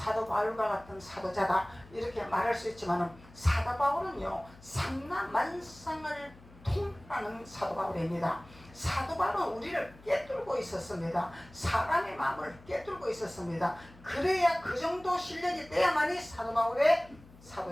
바울과 같은 사도자다 이렇게 말할 수 있지만은 사도 바울은요 삼라만상을 통달하는 사도 바울입니다. 사도 바울은 우리를 꿰뚫고 있었습니다. 사람의 마음을 꿰뚫고 있었습니다. 그래야 그 정도 실력이 돼야만이 사도 바울의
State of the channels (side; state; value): left; noise; hum, 23 dB below the sound